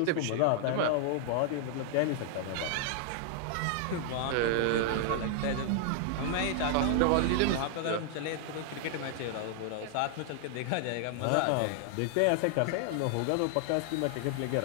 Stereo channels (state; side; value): different; both; correlation -0.01